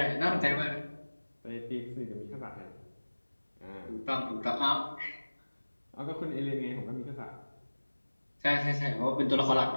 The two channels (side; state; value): both; inverted; correlation -1.00